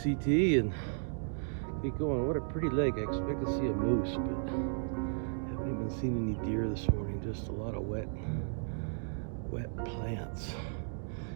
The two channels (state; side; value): silent; left; digital silence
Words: and get going. What a pretty lake. I expect to see a moose, but haven't even seen any deer this morning. Just a lot of wet plants.